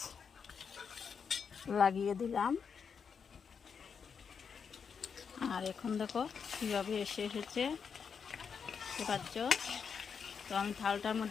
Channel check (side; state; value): right; quieter; 6.4 dB